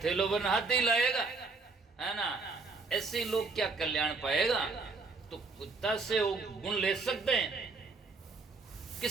थैलों पर हाथ ही लाएगा, है ना। ऐसे लोग क्या कल्याण पाएगा? तो कुत्ता से वो गुण ले सकते हैं,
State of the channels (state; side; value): quieter; left; 4.0 dB